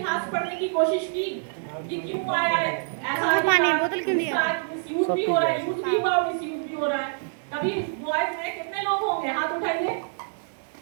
पढ़ने की कोशिश की कि क्यों आया है ऐसा, पानी बोतल क्यों दिया, मिसयूज भी हो रहा है, यूज भी हुआ, मिसयूज भी हो रहा है। कभी बॉयज में कितने लोग होंगे, हाथ उठाइए।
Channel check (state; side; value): silent; left; digital silence